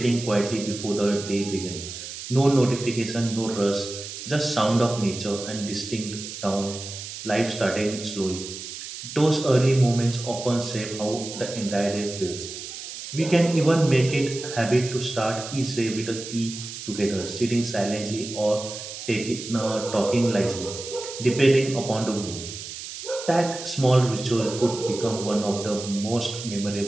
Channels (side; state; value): right; noise; hiss, 10 dB below the sound